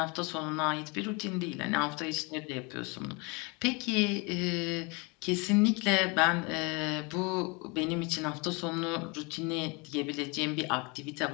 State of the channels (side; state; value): right; quieter; 29.3 dB